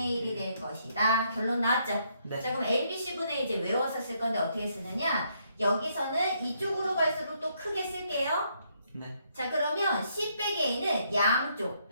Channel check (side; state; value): both; inverted; correlation -0.73